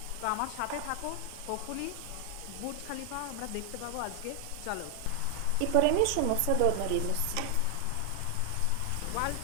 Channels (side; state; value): both; different; correlation 0.00